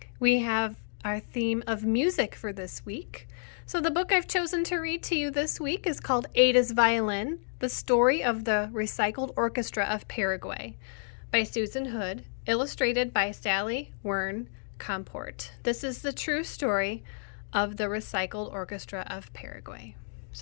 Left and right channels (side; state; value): right; silent; digital silence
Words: We have our theme of music for this week. So the book I've chosen to read to you this week is called Ada's Violin, The Story of the Recycled Orchestra of Paraguay by Susan Hood, illustrated by Sally Wern Comport. This is the true story of the Recycled Orchestra of Paraguay.